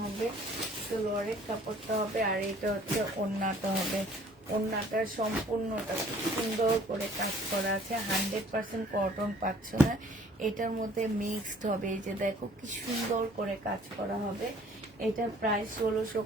হবে, সালোয়ারের কাপড়টা হবে, আর এটা হচ্ছে ওড়নাটা হবে। ওড়নাটা সম্পূর্ণটা সুন্দর করে কাজ করা আছে, 100% কটন পাচ্ছ না, এটার মধ্যে মিক্সড হবে। এই যে দেখো কি সুন্দর করে কাজ করা হবে। এটার প্রাইস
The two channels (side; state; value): both; normal; correlation 0.55